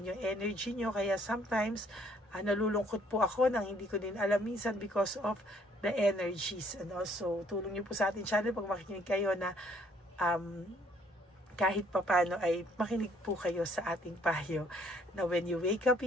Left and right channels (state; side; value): normal; both; correlation 0.63